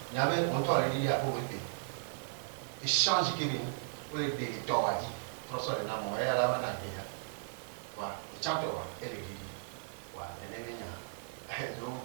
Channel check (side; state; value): left; silent; digital silence